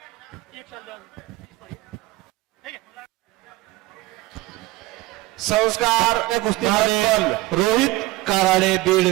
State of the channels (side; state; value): left; quieter; 19.2 dB